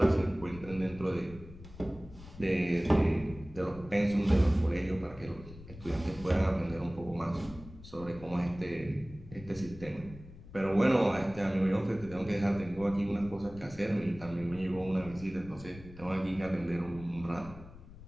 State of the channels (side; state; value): left; noise; rumble, 16 dB below the sound